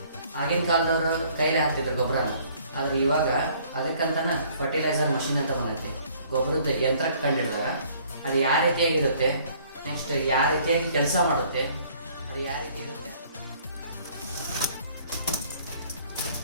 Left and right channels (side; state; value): both; inverted; correlation -0.58